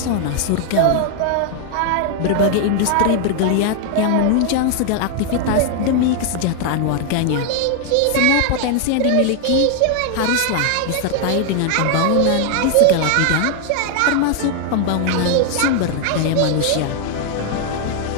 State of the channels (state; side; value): different; both; correlation 0.00